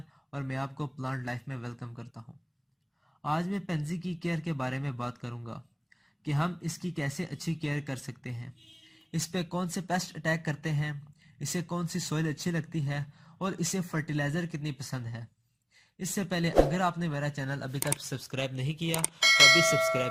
और मैं आपको प्लांट लाइफ में वेलकम करता हूँ। आज मैं पेंजी की केयर के बारे में बात करूँगा कि हम इसकी कैसे अच्छी केयर कर सकते हैं, इस पे कौन से पेस्ट अटैक करते हैं, इसे कौन सी सॉइल अच्छी लगती है और इसे फर्टिलाइज़र कितनी पसंद है। इससे पहले अगर आपने मेरा चैनल अभी तक सब्सक्राइब नहीं किया तो अभी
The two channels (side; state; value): both; identical; correlation 1.00